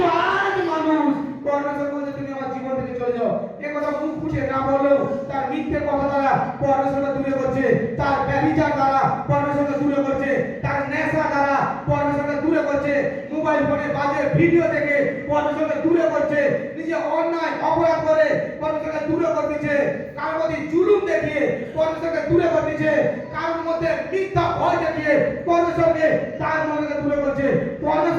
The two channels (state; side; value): identical; both; correlation 1.00